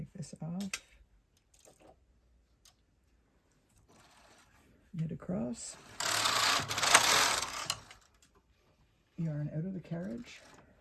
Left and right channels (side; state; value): both; identical; correlation 1.00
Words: this off, knit across, yarn out of the carriage,